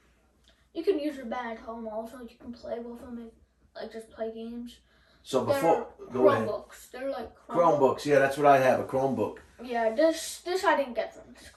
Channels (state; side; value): identical; both; correlation 1.00